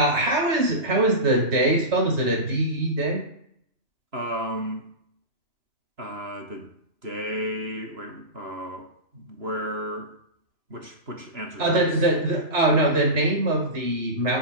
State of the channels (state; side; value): late; left; 3.0 ms